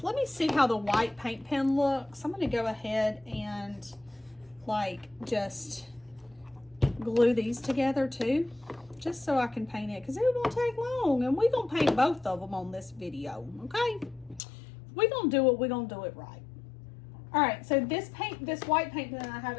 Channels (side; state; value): right; drops out; at 14.4 s